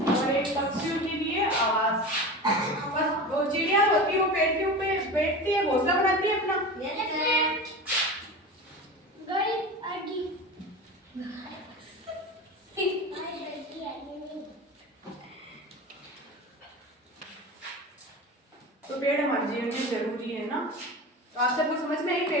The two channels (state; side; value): normal; both; correlation 0.29